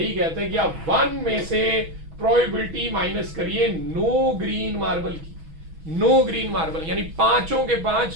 कहता है कि आप 1 में से प्रोबेबिलिटी माइनस करिए नो ग्रीन मार्बल की। नो ग्रीन मार्बल यानी पांचों के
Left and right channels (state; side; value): late; left; 6.2 ms